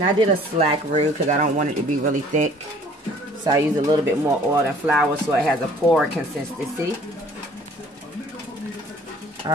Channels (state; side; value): normal; both; correlation 0.54